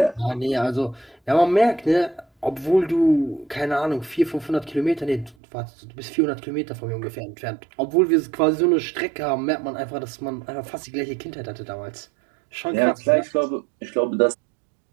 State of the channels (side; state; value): left; drops out; at 5.4 s